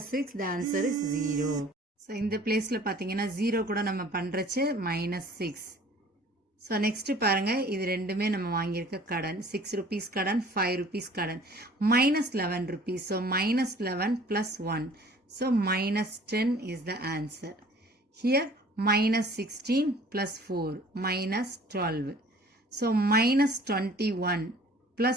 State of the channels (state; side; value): normal; both; correlation 0.51